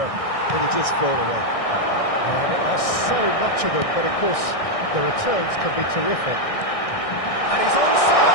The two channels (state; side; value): late; right; 1.6 ms